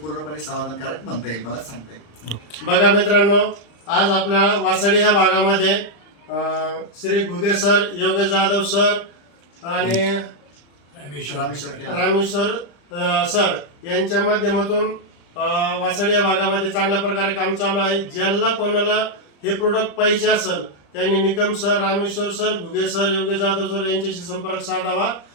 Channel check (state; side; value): late; right; 35 ms